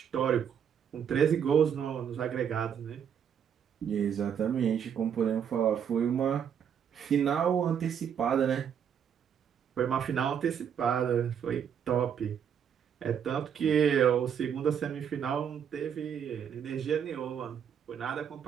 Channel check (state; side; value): quieter; left; 8.2 dB